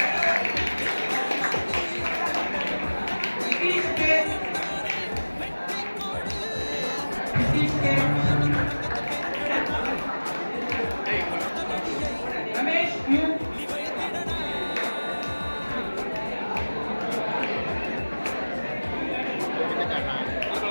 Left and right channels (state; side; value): inverted; both; correlation -1.00